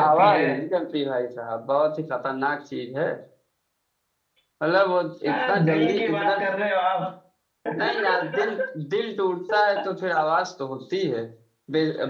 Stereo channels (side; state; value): both; identical; correlation 1.00